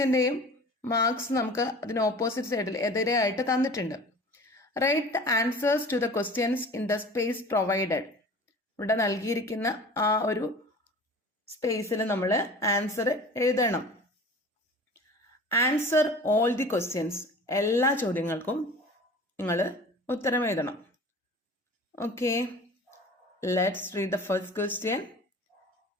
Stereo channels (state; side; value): normal; both; correlation 0.41